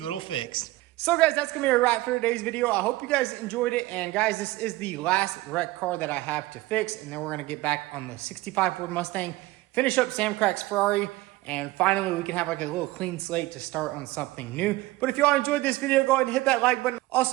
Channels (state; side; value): quieter; left; 18.8 dB